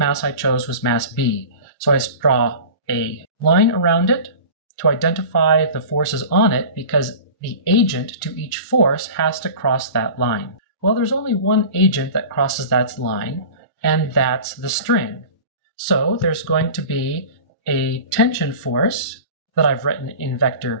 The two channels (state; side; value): inverted; both; correlation -0.37